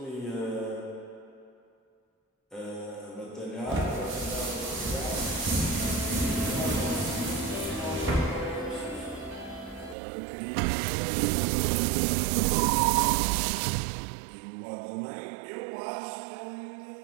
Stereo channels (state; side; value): drops out; left; at 10.0 s